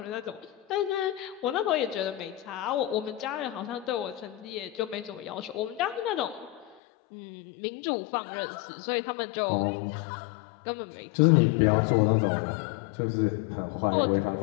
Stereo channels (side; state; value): right; drops out; at 6.8 s